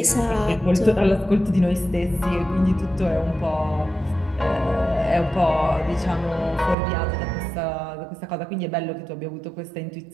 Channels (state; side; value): drops out; left; at 6.8 s